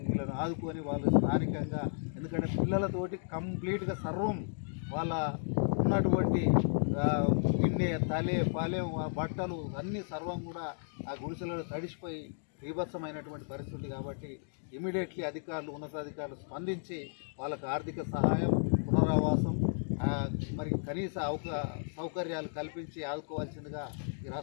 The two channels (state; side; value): silent; right; digital silence